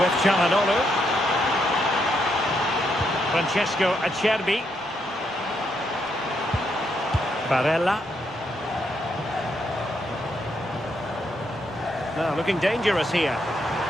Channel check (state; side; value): normal; both; correlation 0.77